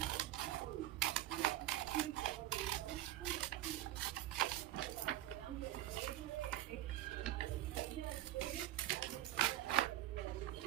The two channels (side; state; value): left; quieter; 13.9 dB